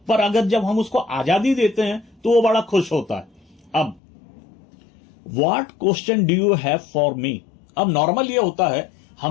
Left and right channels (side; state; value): right; drops out; at 4.0 s